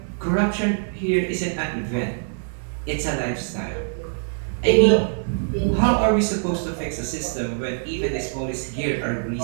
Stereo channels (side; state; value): left; silent; digital silence